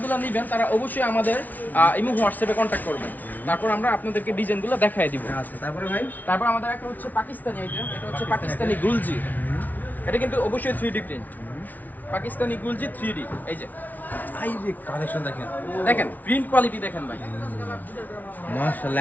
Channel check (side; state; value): right; late; 0.079 ms